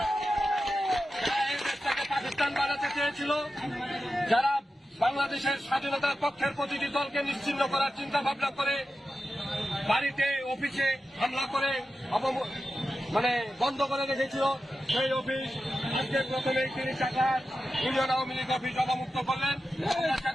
দেশটাকে পাকিস্তান বানাতে চেয়েছিল, যারা বাংলাদেশের স্বাধীনতার পক্ষের প্রতিটি দলকে নিশ্চিহ্ন করার চিন্তা ভাবনা করে বাড়িতে অফিসে হামলা করে বন্ধ করে রেখেছিল, সেই অফিস আজকে প্রথমেই তিনি চাকলাট ইউনিয়ন আওয়ামী লীগ অফিস অবমুক্ত করলেন।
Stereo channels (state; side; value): normal; both; correlation 0.92